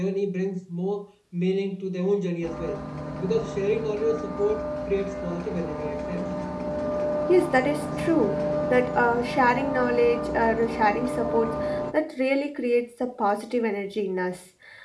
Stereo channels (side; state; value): both; identical; correlation 1.00